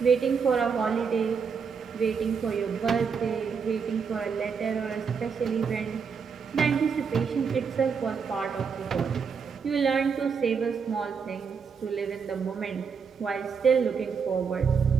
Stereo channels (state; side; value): quieter; left; 6.0 dB